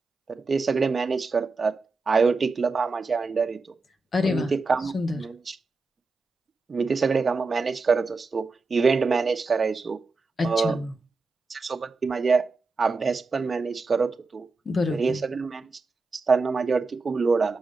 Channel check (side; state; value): left; quieter; 3.7 dB